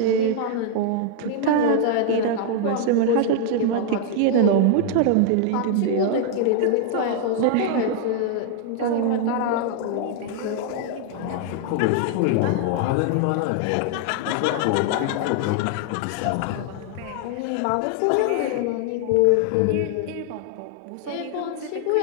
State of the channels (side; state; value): both; different; correlation 0.00